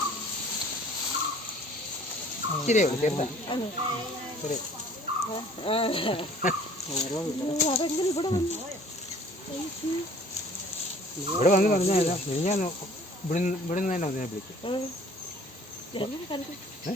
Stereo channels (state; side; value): normal; both; correlation 0.53